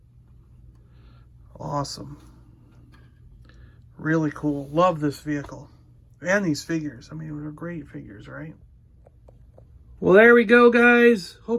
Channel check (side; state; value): both; identical; correlation 1.00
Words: Awesome. Really cool. Love this vehicle. And these figures. I mean, they're great figures, right? Well, there we go, guys.